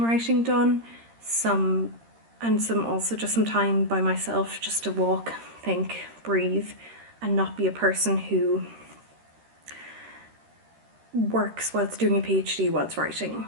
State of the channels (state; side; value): late; left; 13 ms